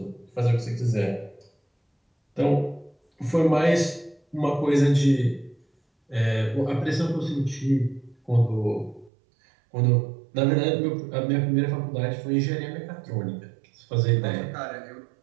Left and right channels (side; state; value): left; drops out; at 9.1 s